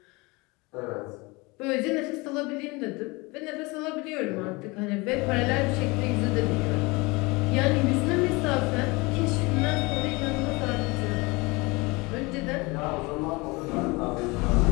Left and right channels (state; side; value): quieter; right; 25.2 dB